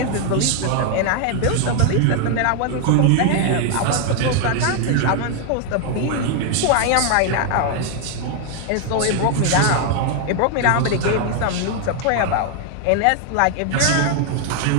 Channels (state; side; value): different; both; correlation 0.00